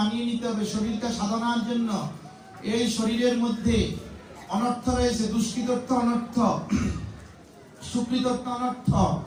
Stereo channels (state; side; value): identical; both; correlation 1.00